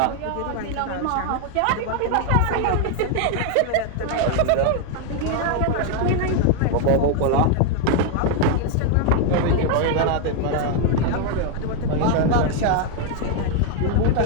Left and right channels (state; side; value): different; both; correlation 0.01